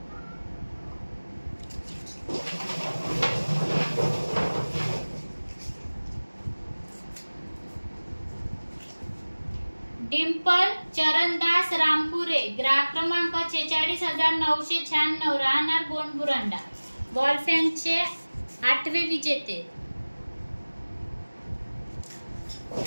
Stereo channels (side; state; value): both; inverted; correlation -1.00